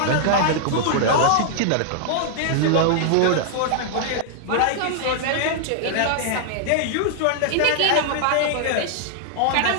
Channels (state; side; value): different; both; correlation -0.01